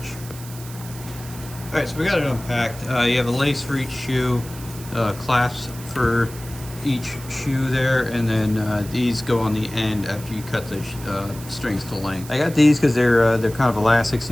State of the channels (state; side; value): noise; right; hiss, 16 dB below the sound